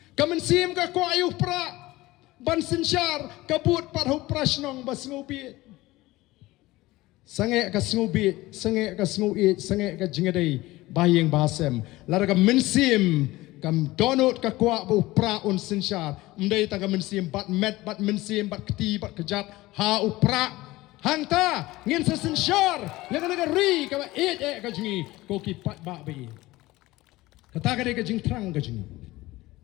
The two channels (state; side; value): quieter; right; 18.8 dB